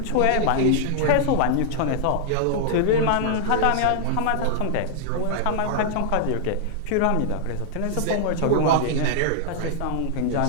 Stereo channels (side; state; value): both; different; correlation -0.01